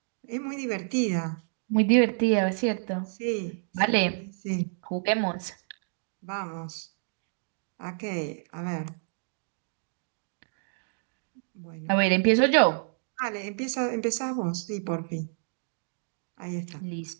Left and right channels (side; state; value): left; silent; digital silence